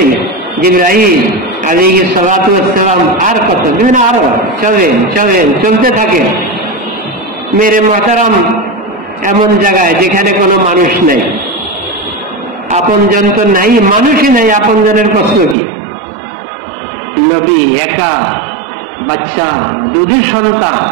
জিবরাইল আলাইহিস সালাতু ওয়াস সালাম আর কত দিন, আরো চলেন চলেন, চলতে থাকেন। মেরে মুহতারাম এমন জায়গায় যেখানে কোনো মানুষ নেই, আপনজন তো নাই, মানুষই নাই, আপনজনের প্রশ্ন কি? নবী একা, বাচ্চা, দুধের সন্তান।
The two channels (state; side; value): drops out; left; at 15.6 s